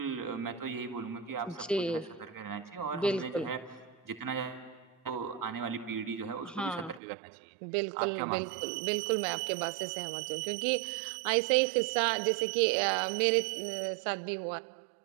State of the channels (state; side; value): drops out; left; at 7.0 s